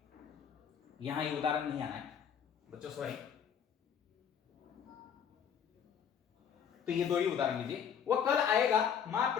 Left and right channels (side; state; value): right; quieter; 8.0 dB